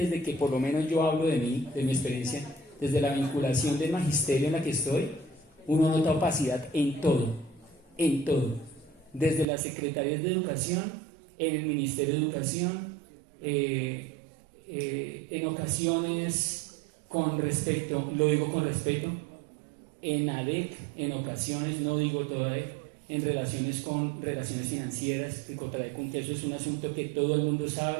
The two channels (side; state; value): left; drops out; at 9.5 s